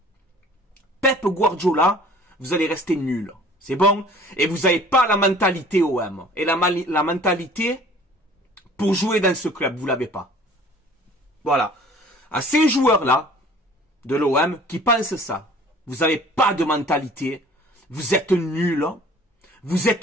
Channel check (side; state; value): both; normal; correlation 0.50